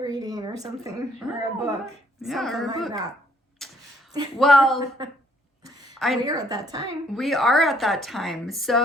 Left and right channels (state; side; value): normal; both; correlation 0.66